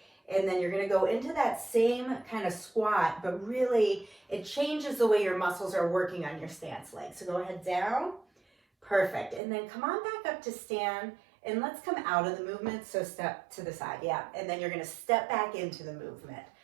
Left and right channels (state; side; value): drops out; left; at 9.4 s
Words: And then you're going to go into that same kind of squat, but really it changes the way your muscles are working on your stance leg. So go ahead down. Perfect. And then come on back up to stand, and let's come out of the movement. So step to the side. Yeah. And then you're going to step back into the movement.